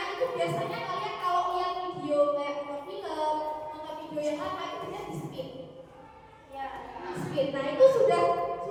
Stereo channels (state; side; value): identical; both; correlation 1.00